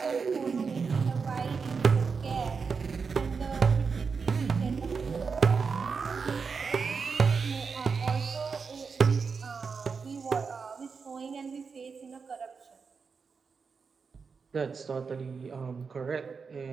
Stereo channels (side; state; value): left; quieter; 5.3 dB